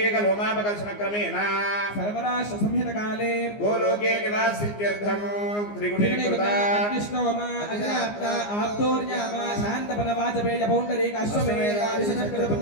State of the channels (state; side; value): late; right; 14 ms